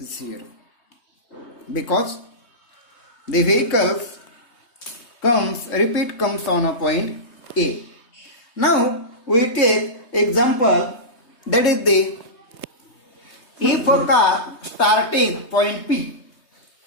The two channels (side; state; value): right; late; 3.2 ms